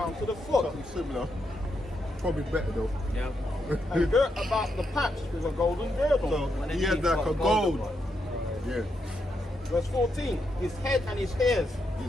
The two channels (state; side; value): normal; both; correlation 0.81